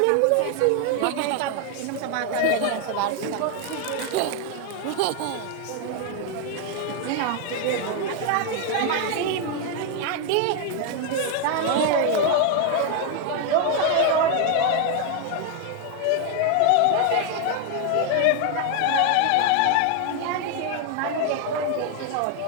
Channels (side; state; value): both; different; correlation 0.01